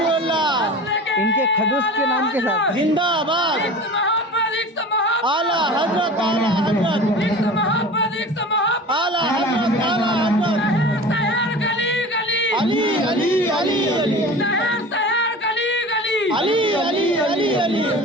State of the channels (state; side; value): normal; both; correlation 0.37